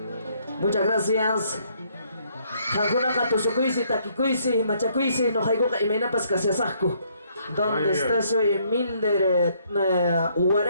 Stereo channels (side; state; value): both; inverted; correlation -0.68